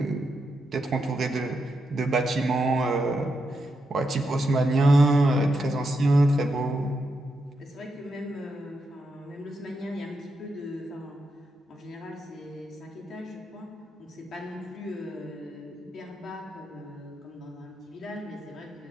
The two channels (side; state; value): both; normal; correlation 0.84